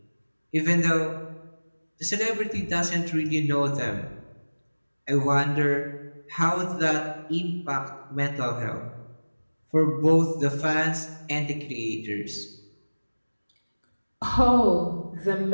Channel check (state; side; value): inverted; both; correlation -1.00